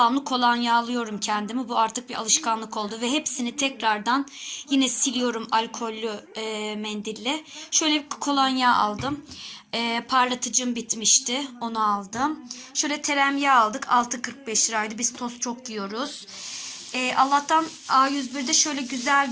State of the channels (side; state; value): both; identical; correlation 1.00